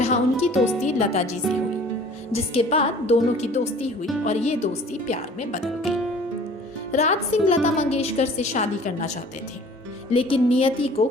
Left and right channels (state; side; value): normal; both; correlation 0.49